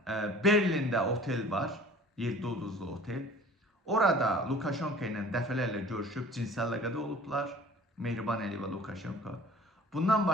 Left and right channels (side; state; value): both; normal; correlation 0.47